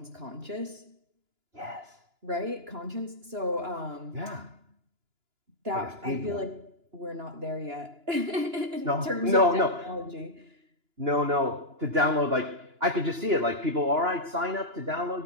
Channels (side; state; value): left; late; 2.9 ms